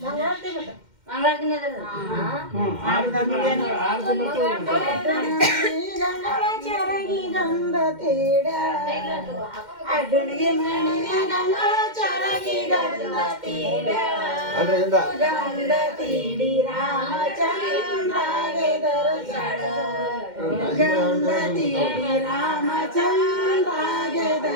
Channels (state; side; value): late; left; 2.1 ms